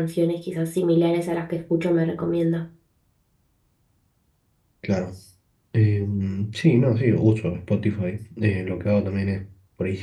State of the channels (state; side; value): identical; both; correlation 1.00